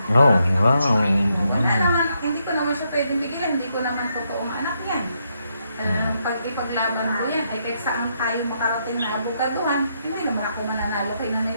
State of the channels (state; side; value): inverted; both; correlation -0.78